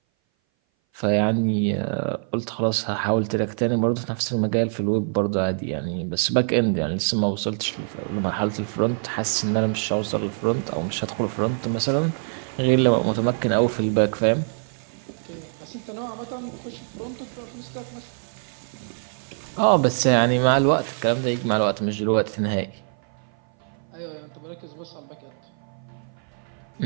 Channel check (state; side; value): silent; left; 57 dB below the other